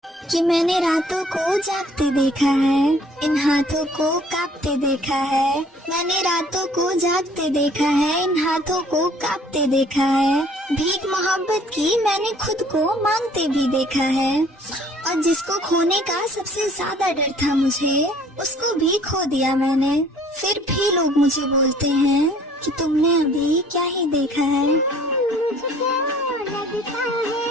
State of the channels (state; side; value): normal; both; correlation 0.56